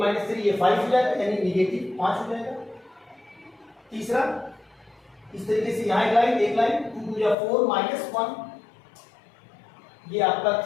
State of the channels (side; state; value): right; drops out; at 7.4 s